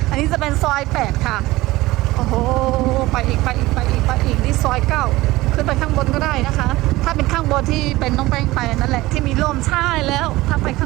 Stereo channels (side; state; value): left; quieter; 18.8 dB